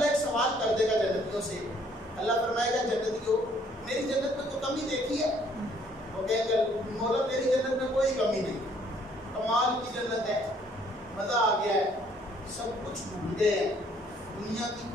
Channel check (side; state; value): both; normal; correlation 0.63